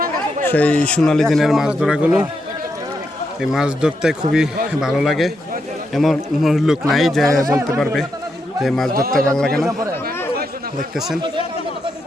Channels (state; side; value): normal; both; correlation 0.82